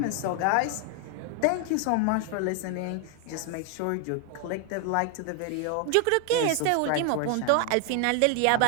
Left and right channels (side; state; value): both; different; correlation 0.00